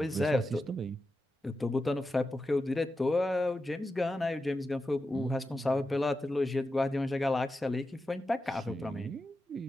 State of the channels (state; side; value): normal; both; correlation 0.90